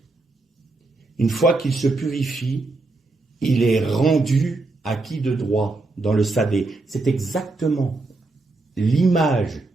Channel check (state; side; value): quieter; left; 3.3 dB